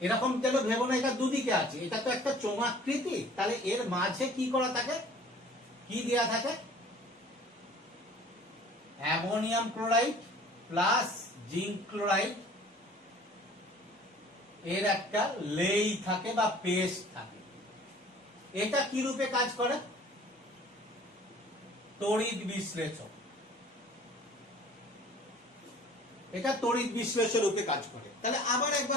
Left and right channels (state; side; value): normal; both; correlation 0.50